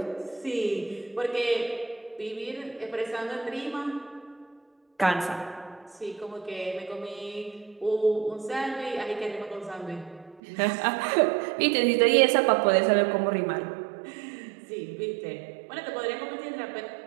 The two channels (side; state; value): left; drops out; at 10.4 s